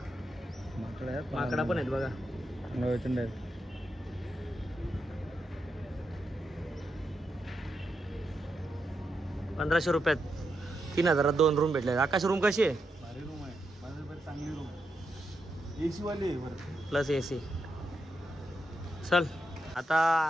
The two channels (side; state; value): both; normal; correlation 0.84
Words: माकडा पण आहेत बघा. 1500 रुपयात 3000 2 रूम भेटले. आकाश रूम कशी आहे. भारी रूम आहे. चांगली रूम. AC वाली प्लस AC. चल आता